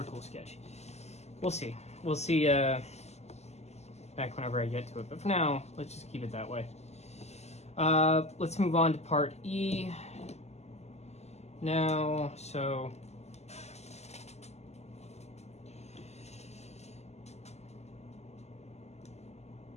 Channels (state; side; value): late; right; 0.32 ms